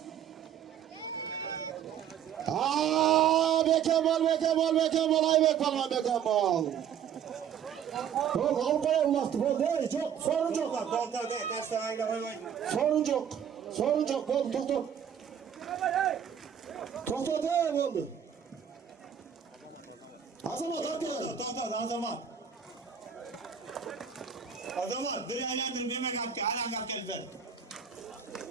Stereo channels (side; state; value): left; quieter; 8.7 dB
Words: Beken bol Ayberk palvan beken bol. Bol Avrupa'ya ulaştı bol değil çok sorun çok. Doktor değil kaç tane koy. Sorun çok bol doktor. Doktor değil oldu. Azamat hak gel. Doktor Azamat. Azamat bir eğlendir meme kapke halen kapke biber.